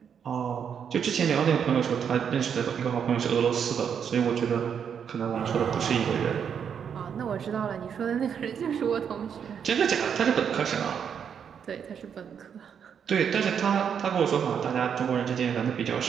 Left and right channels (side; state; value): left; quieter; 7.6 dB